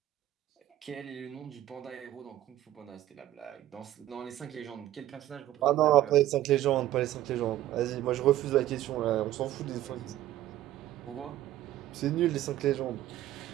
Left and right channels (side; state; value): left; quieter; 13.7 dB